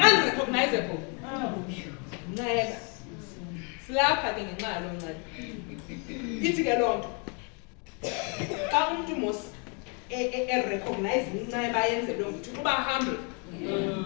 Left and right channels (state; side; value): quieter; right; 36.1 dB